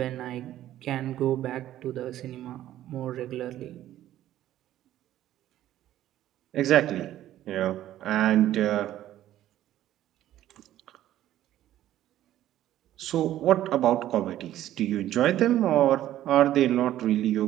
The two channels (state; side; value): quieter; left; 13.1 dB